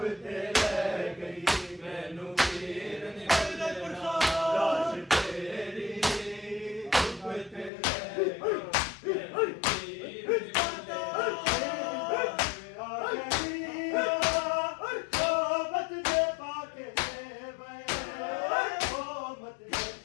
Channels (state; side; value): drops out; right; at 7.7 s